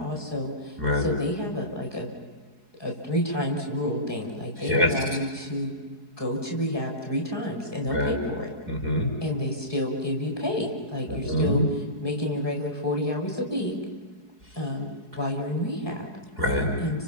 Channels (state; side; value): late; left; 4.7 ms